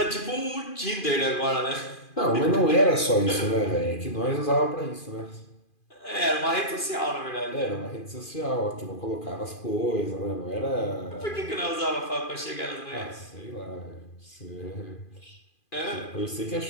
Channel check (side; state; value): right; late; 2.4 ms